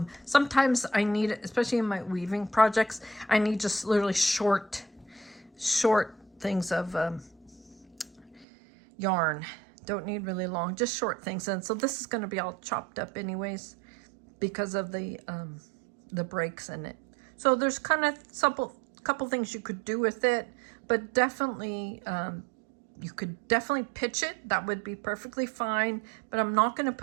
sometimes I need it, especially in my weaving projects, I need just literally short things of yarn. Don't need really long, just short things. And so this is going to be all chopped up anyways because of the breaks in it. So there's kind of couple things you could do with it, but definitely you could definitely pitch it. That would be perfectly fine. But I'm not going to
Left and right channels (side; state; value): left; drops out; at 8.5 s